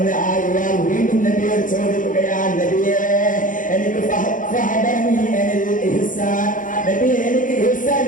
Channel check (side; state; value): right; late; 0.38 ms